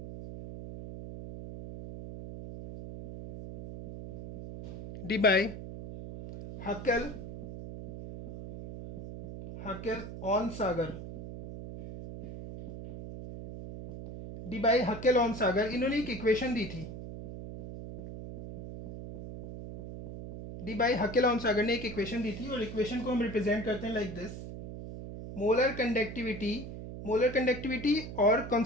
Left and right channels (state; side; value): noise; right; hum, 10 dB below the sound